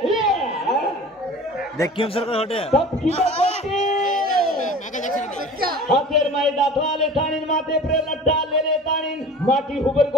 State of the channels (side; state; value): both; normal; correlation 0.41